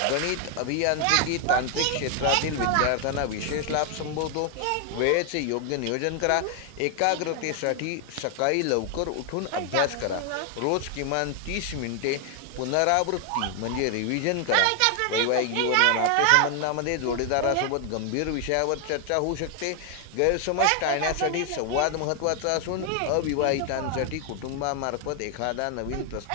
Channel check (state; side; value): different; both; correlation 0.00